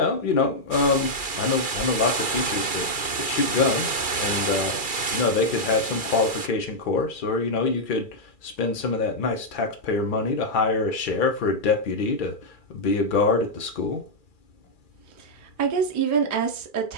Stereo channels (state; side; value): late; right; 2.4 ms